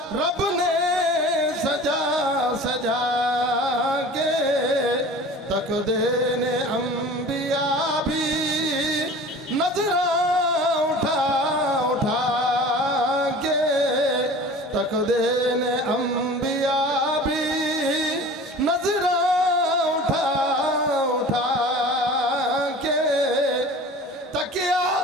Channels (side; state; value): both; normal; correlation 0.40